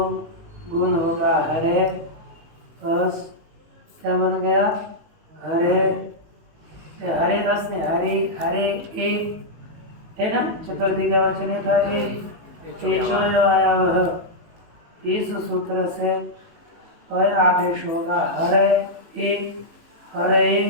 गुण होगा हरे, अस क्या बन गया हरे, हरे अस ने हरे हरे ए है ना, चतुर्थी का वचन है था ए आया वह। इस सूत्र से अय आदेश होगा हरे ए हरे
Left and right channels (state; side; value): late; left; 19 ms